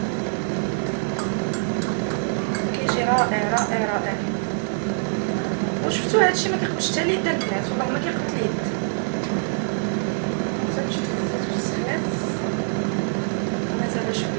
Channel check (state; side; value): silent; left; digital silence